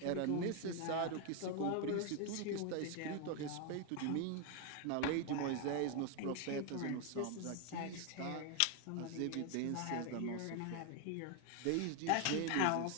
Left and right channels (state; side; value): different; both; correlation 0.01